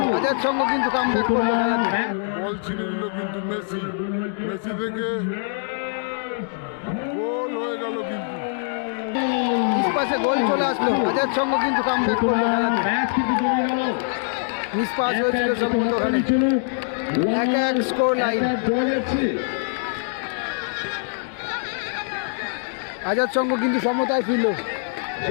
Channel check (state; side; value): silent; right; 63 dB below the other